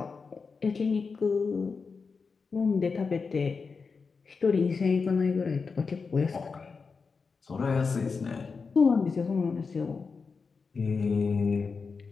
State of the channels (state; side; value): quieter; right; 4.9 dB